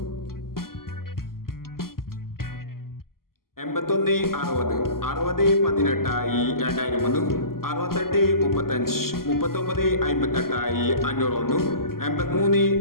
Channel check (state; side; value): late; right; 0.92 ms